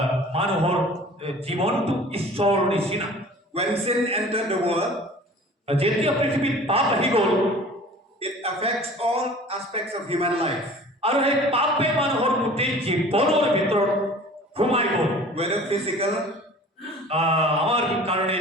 মানুহৰ জীৱনটো ঈশ্বৰৰ নিচিনা When sin entered the world, যেতিয়া পৃথিৱীত পাপ আহি গ'ল it affects all aspects of human life. আৰু সেই পাপে মানুহৰ গোটেই জীৱনৰ ভিতৰত সোমাই গ'ল Whether physical, আমাৰ কাৰণে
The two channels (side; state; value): both; normal; correlation 0.45